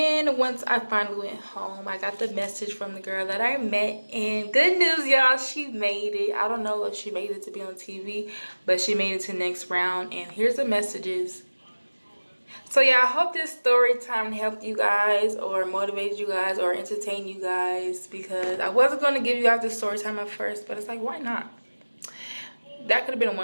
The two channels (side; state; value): both; inverted; correlation -1.00